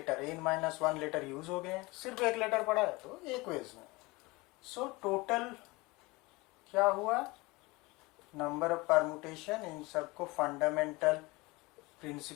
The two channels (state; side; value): quieter; right; 23.2 dB